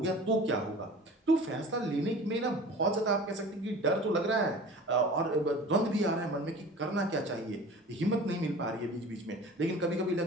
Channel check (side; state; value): both; normal; correlation 0.40